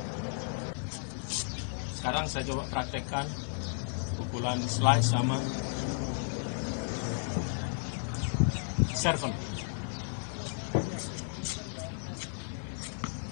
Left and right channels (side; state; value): right; silent; digital silence